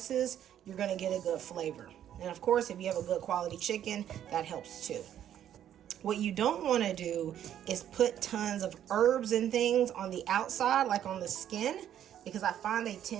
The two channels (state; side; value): quieter; left; 10.5 dB